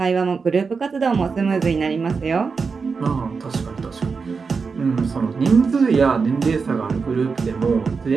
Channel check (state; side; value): quieter; left; 5.0 dB